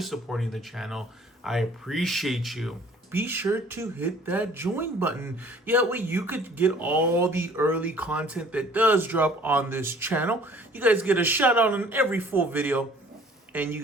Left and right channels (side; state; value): both; normal; correlation 0.53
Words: supporting the channel. I appreciate you. Be sure to hit that join button. That way you could get all the early content that does drop on this channel. You guys get a shout out on every full video, and you